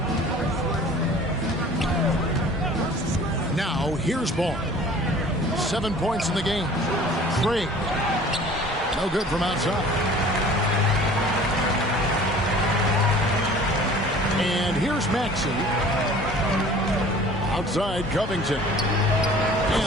Now, here's Ball. 7 points in the game. Craig. No good from outside. And here's Maxey. Outside, Covington.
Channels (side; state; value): both; normal; correlation 0.47